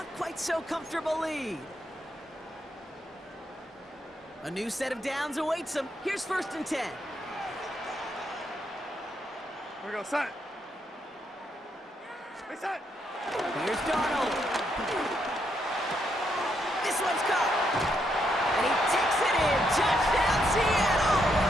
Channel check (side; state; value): both; normal; correlation 0.77